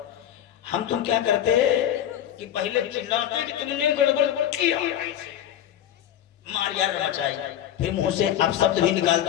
हम तुम क्या करते, कि पहले चिल्लाते कि तुमने गड़बड़ किया, मार यार मचाई, फिर मुंह से अपशब्द भी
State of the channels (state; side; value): quieter; right; 10.9 dB